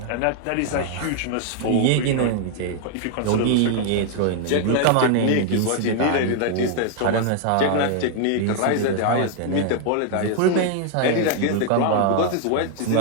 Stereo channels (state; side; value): different; both; correlation 0.00